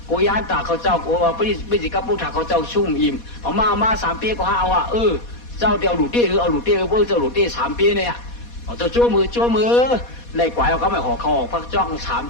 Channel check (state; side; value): late; right; 4.2 ms